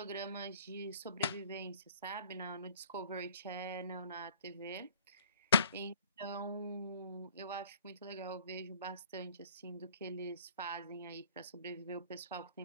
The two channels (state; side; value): inverted; both; correlation -0.52